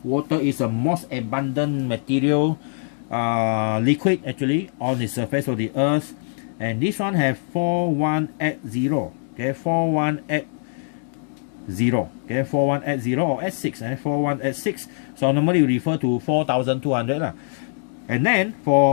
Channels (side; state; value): right; silent; 63 dB below the other